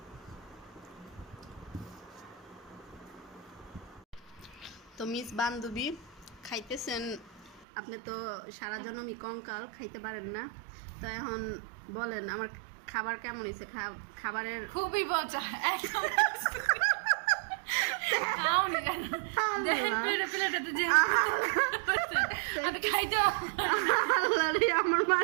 তো মিস বান্ধবী খাইতেছেন, আপনি তো সারা জন্মই কঙ্কাল, খাইতে পারেন না। তো এখন বলেন আমার খাবার কেমন হয়েছে? খাবারের খুবই মজা। আমার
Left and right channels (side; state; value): left; drops out; at 7.7 s